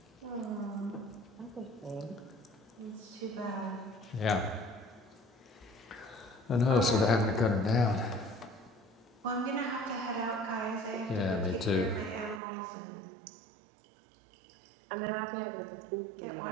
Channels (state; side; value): drops out; left; at 12.4 s